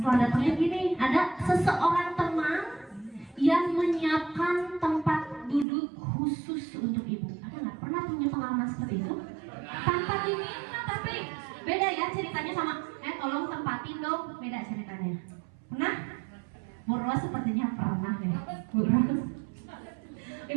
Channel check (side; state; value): left; drops out; at 5.7 s